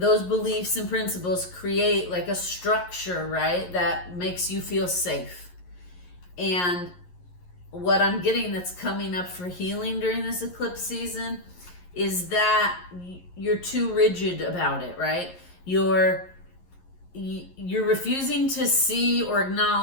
beliefs and principles create like a structure, right? That makes you feel safe. And what I'm getting that's coming up for healing during this eclipse season is that you're too rigid about it, right? You're refusing to see or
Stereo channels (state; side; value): late; right; 11 ms